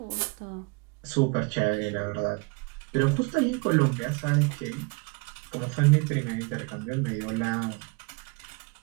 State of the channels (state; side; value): quieter; left; 30.8 dB